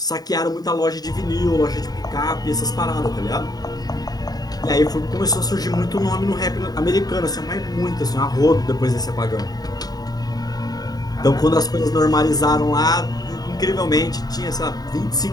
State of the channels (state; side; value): late; right; 0.19 ms